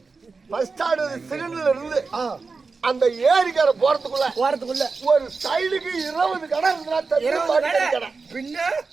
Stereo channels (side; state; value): left; quieter; 4.4 dB